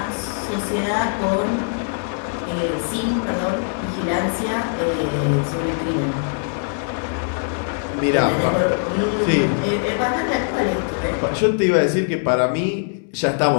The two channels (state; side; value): silent; right; 65 dB below the other